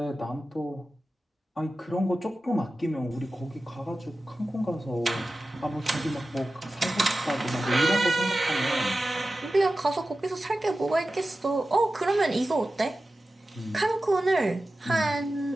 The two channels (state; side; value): normal; both; correlation 0.94